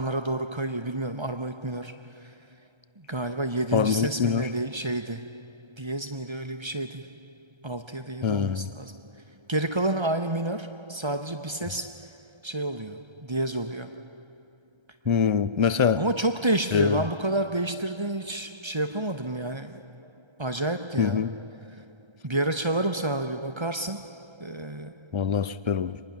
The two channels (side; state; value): left; late; 1.3 ms